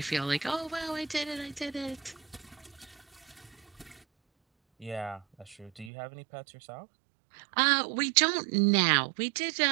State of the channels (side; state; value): left; drops out; at 5.9 s